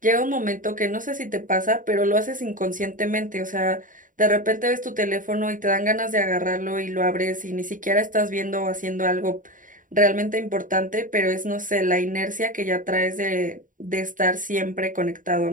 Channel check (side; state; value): left; late; 0.39 ms